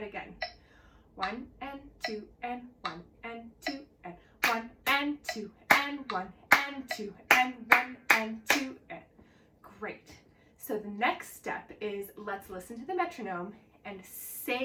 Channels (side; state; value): both; identical; correlation 1.00